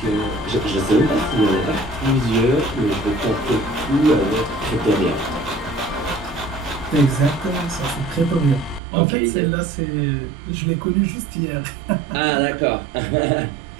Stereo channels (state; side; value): drops out; left; at 8.8 s